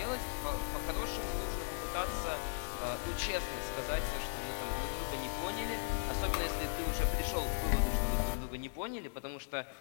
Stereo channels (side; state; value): right; silent; digital silence